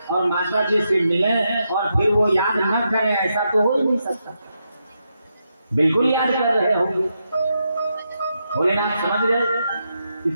और माता जी से मिलें और फिर वो याद न करें, ऐसा तो हो ही नहीं सकता। बिल्कुल याद कर रहे होंगे। भोलेनाथ समझ गए कि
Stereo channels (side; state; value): both; inverted; correlation -0.83